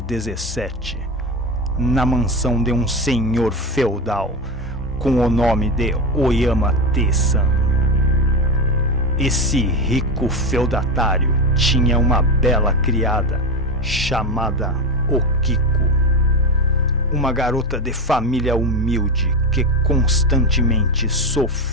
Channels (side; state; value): both; normal; correlation 0.18